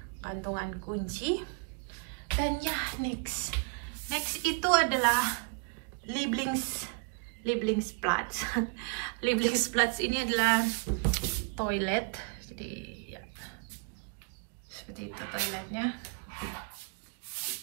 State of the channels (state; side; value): quieter; left; 38.5 dB